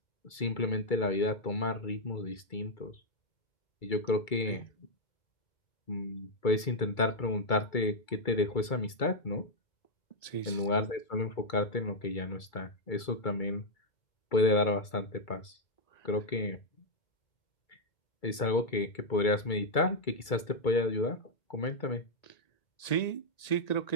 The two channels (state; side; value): late; right; 2.3 ms